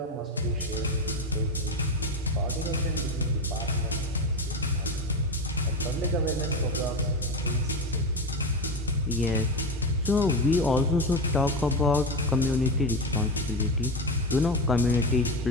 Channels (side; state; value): both; normal; correlation 0.19